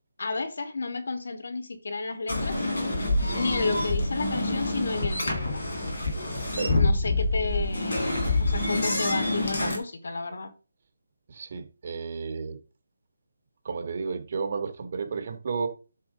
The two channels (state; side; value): inverted; both; correlation -0.83